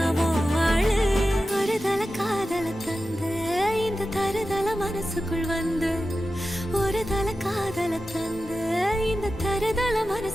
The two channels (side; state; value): both; normal; correlation 0.93